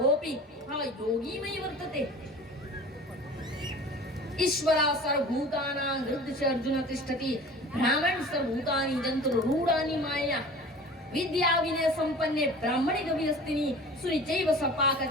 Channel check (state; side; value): normal; both; correlation 0.41